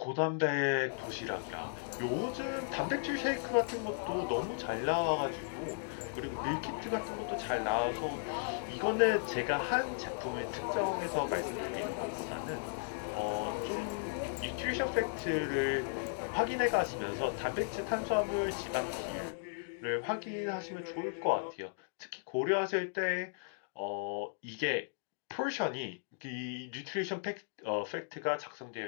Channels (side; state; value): right; silent; digital silence